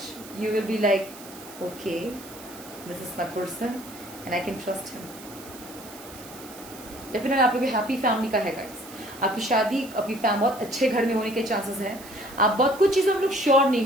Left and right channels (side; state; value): right; noise; hiss, 17 dB below the sound